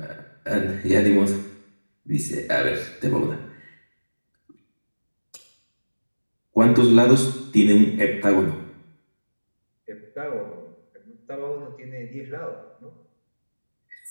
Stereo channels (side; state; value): both; inverted; correlation -1.00